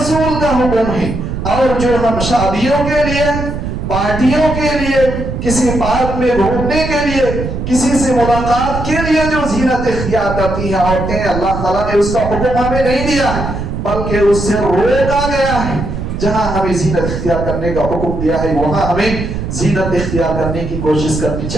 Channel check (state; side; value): noise; right; rumble, 5 dB below the sound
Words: کا حکم ہے۔ اور جو ہم شادیوں کے لیے، پارٹیوں کے لیے، کسی پارک میں گھومنے کے لیے، کسی سے ملاقات کے لیے جو زینت اختیار کرتی ہیں عورتیں، اللہ تعالیٰ نے اس کا حکم ہمیں نہیں دیا ہے بلکہ اس سے روکا گیا ہے۔ جہاں ہمیں زینت اختیار کرنے کا حکم دیا ہے وہاں ہمیں زینت اختیار کرنے کی کوشش کرنی